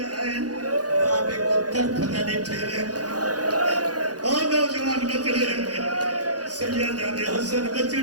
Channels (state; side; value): late; left; 0.68 ms